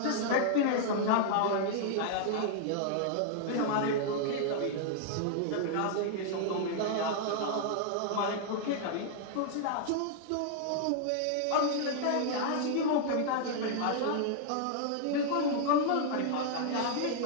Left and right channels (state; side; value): different; both; correlation -0.01